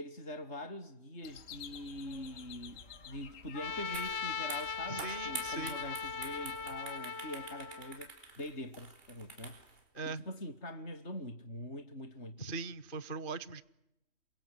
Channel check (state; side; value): late; right; 3.1 ms